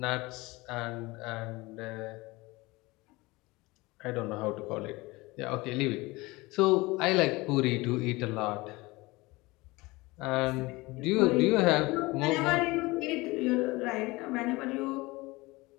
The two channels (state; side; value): quieter; right; 22.3 dB